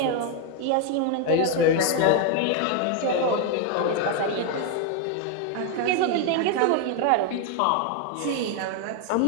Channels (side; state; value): both; different; correlation 0.01